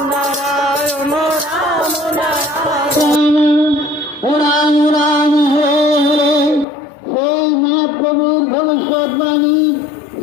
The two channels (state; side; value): drops out; right; at 6.7 s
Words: নারায়ণ রাম নারায়ণ রাম রাম হরে হরে। সেই মহাপ্রভুর ভবিষ্যৎবাণী